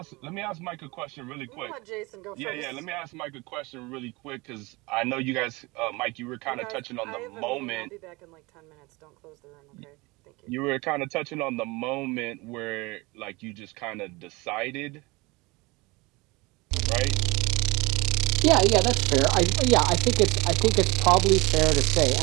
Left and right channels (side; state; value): left; quieter; 24.2 dB